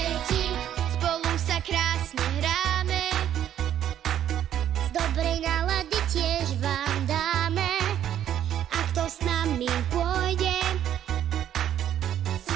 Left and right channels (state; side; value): quieter; left; 10.6 dB